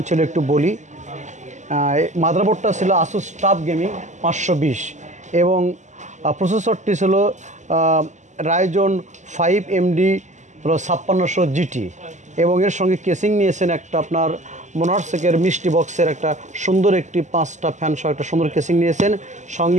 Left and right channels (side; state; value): left; late; 0.34 ms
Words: ছিল একটু বলি। মাদারবোর্ডটা ছিল আসুস টাফ গেমিং 520 এবং প্রসেসরটি ছিল রাইজন 5 এমডি হলো 5600 জিটি এবং এর সঙ্গে কেসিং নিয়েছেন একটা আপনার মোনার্সেকের মিষ্টি বক্সের একটা সুন্দর একটি 5টা ফ্যান সহ একটা সুন্দর কেসিং নিয়েছেন।